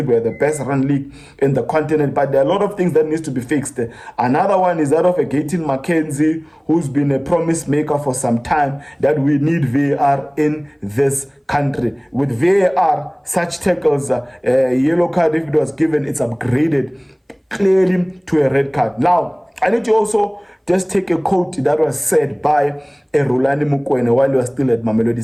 we're the best run league in the continent, but there are a lot of things that needs to be fixed. Another one is that of a Gayton McKenzie, who's been a promise maker for some time, that we need VAR in this country. With VAR, such tackles, a yellow card, if it was given, it's upgraded clearly to a red card. Now, I need to also just take a quote that was said by Rulani Mukwene while he was still at Mamelodi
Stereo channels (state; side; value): identical; both; correlation 1.00